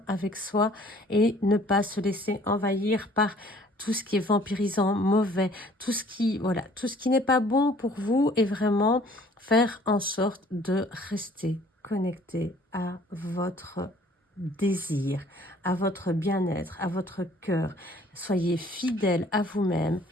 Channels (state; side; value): normal; both; correlation 0.55